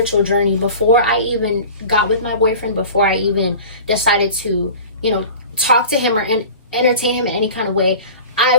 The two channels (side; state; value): both; inverted; correlation -0.38